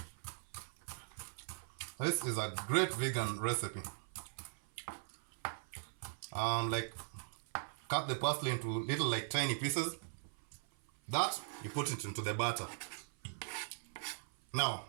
This is a great vegan recipe. Like cut the parsley into little like tiny pieces. That you put it into the batter. Now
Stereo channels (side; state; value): left; silent; 51 dB below the other